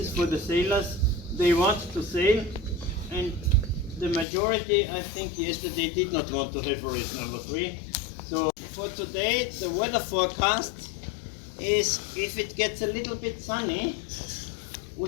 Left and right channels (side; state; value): right; drops out; at 4.2 s